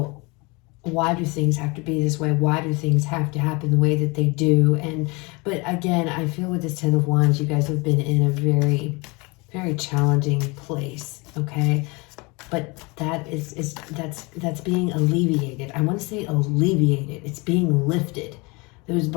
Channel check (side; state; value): right; quieter; 27.2 dB